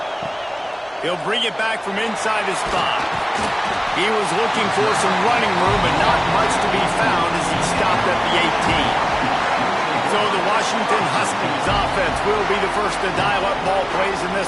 He'll bring it back from inside his spot. He was looking for some running room, but not much to be found as he stopped at the 18. So the Washington Huskies offense will be the first to dial up ball plays in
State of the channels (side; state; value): both; identical; correlation 1.00